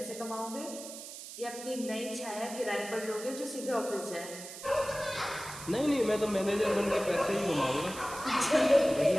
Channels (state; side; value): noise; right; hiss, 12 dB below the sound